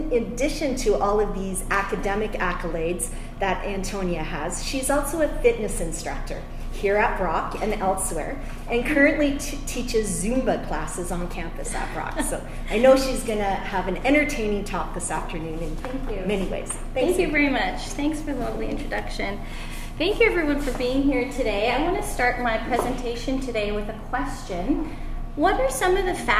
addition to all of these academic accolades that Antonia has, she's also a fitness instructor here at Brock and elsewhere, and currently teaches Zumba classes on campus at Brock. So I know she's going to have an entertaining talk this afternoon in many ways. Thank you very much. Thanks for the lovely introduction. Thank you, everyone, for being here today. I want to start my presentation today with a question. What are some of the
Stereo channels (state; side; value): identical; both; correlation 1.00